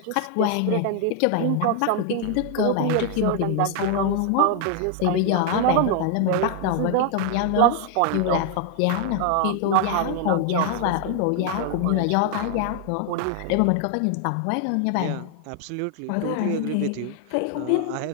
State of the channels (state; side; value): different; both; correlation 0.00